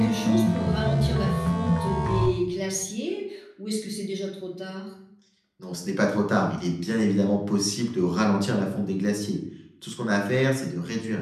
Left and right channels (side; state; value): both; identical; correlation 1.00